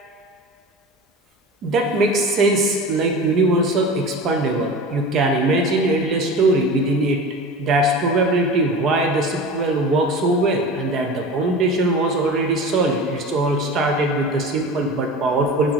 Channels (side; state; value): both; normal; correlation 0.33